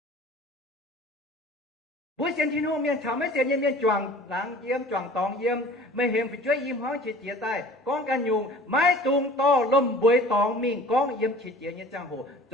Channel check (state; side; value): normal; both; correlation 0.46